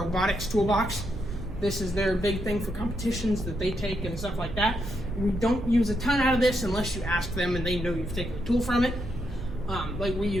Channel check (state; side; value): noise; right; hum, 12 dB below the sound